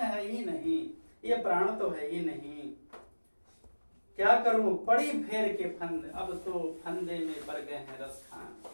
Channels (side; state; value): both; inverted; correlation -1.00